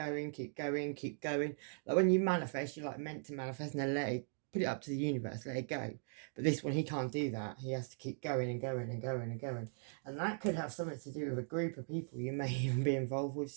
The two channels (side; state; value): left; silent; digital silence